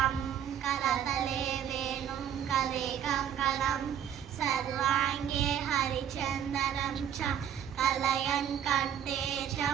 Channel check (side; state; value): left; quieter; 9.4 dB